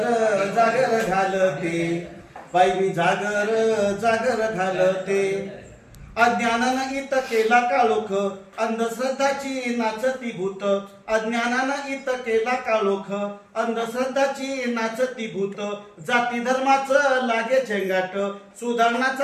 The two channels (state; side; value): identical; both; correlation 1.00